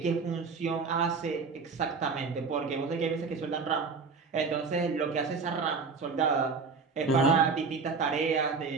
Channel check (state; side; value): quieter; left; 4.8 dB